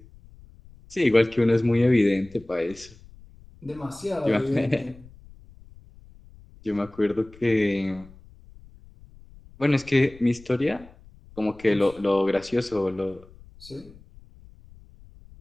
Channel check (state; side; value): noise; left; rumble, 23 dB below the sound